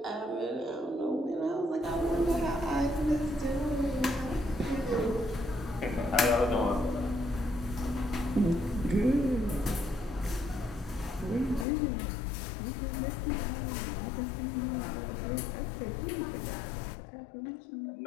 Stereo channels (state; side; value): drops out; right; at 11.7 s